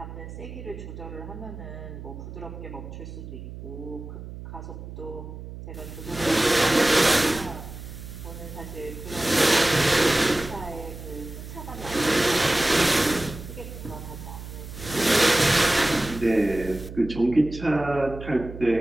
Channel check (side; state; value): right; noise; hum, 11 dB below the sound